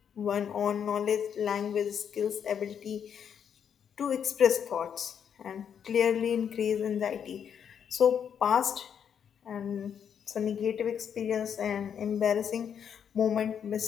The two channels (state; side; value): quieter; right; 8.0 dB